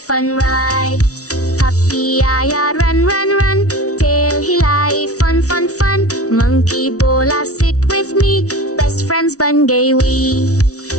fun ride. Puppy आया run run run, tail हिलाई fun fun fun. Monkey बोला sit with me, best friends बन गए we.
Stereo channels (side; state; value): right; late; 0.67 ms